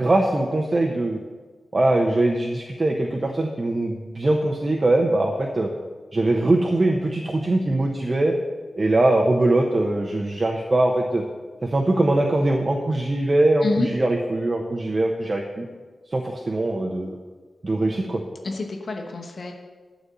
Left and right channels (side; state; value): both; normal; correlation 0.96